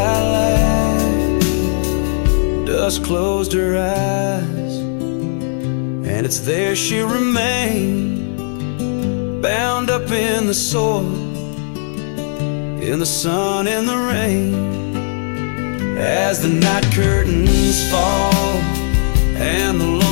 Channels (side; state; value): right; silent; 62 dB below the other